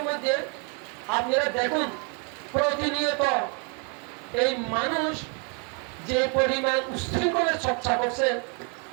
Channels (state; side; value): quieter; left; 37.2 dB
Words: মধ্যে আপনারা দেখুন, প্রতিনিয়ত এই মানুষ যে পরিমাণ উশৃঙ্খলের চর্চা করছে,